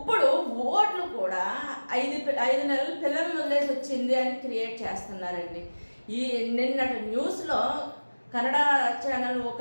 ఓట్లు కూడా 5 నెలల పిల్లలను వదిలేసి వచ్చింది అని క్రియేట్ చేస్తున్నారండి. నిన్నటి న్యూస్లో కన్నడ ఛానల్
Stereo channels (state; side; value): inverted; both; correlation -1.00